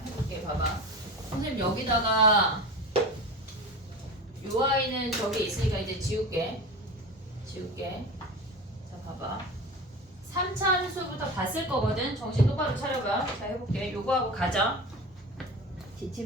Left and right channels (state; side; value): normal; both; correlation 0.31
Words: 해볼게. 봐봐. 선생님 여기다가 요 아이는 저기 있으니까 이제 지울게. 자 봐봐. 3차 함수부터 봤을 거거든. 정신 똑바로 차려봐. 자 해볼게. 요거하고 가자. DT